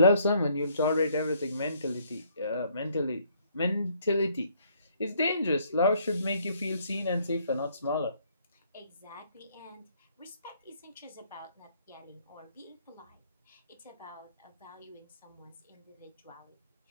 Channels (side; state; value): both; inverted; correlation -0.66